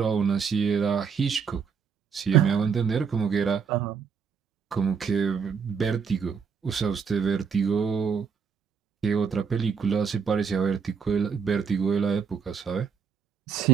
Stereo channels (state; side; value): quieter; left; 6.2 dB